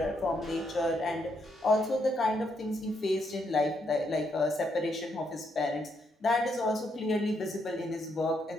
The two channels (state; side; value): normal; both; correlation 0.76